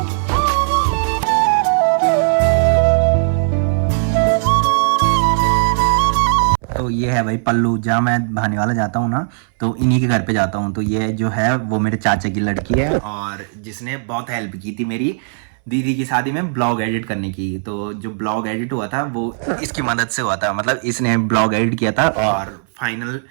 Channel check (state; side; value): silent; left; 62 dB below the other